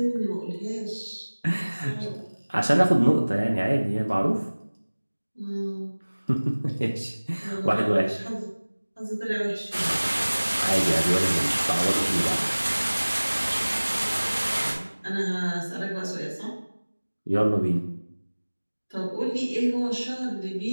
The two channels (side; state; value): both; inverted; correlation -1.00